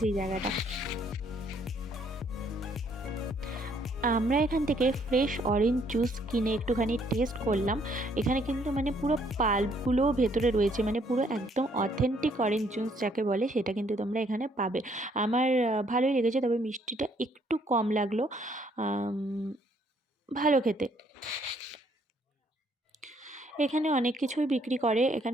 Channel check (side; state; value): both; normal; correlation 0.67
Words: এই জায়গাটা। আমরা এখান থেকে ফ্রেশ অরেঞ্জ জুস কিনে একটুখানি টেস্ট করলাম। এখানে কিন্তু মানে পুরো পাল্পগুলোও ভেতরে রয়েছে, মানে পুরো একদম অথেন্টিক অরেঞ্জ জুস যাকে বলে সেটা কিন্তু তোমরা এখানে পাবে। আমার ভালোই লেগেছে, তবে মিষ্টিটা একটু কম লাগলো, ভালো খেতে। এখানে অনেক কিছুই বিক্রি করে।